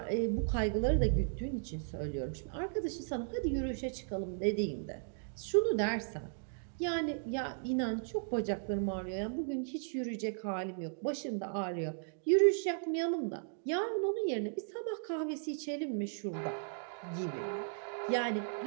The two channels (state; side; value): silent; left; digital silence